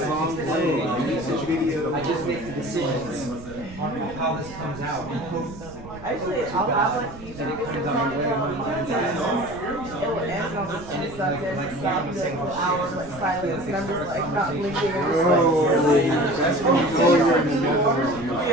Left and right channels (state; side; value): noise; right; rumble, 16 dB below the sound